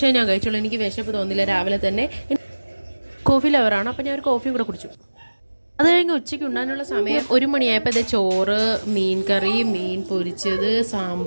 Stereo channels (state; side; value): inverted; both; correlation -1.00